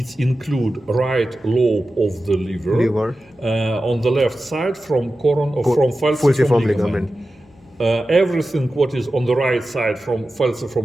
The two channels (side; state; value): left; noise; hum, 30 dB below the sound